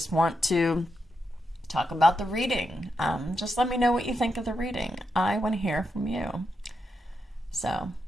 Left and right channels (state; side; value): normal; both; correlation 0.85